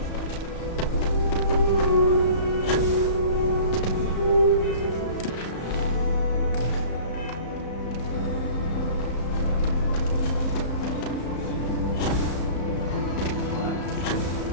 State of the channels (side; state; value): right; late; 34 ms